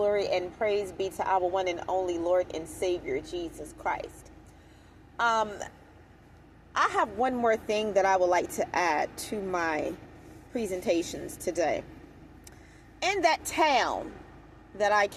and praise be to our one and only Lord and Savior, Jesus Christ. I have one more thing that I would like to add to my presentations today. In that town that I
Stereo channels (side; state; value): both; identical; correlation 1.00